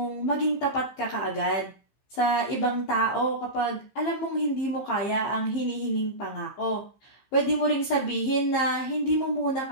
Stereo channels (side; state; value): right; late; 15 ms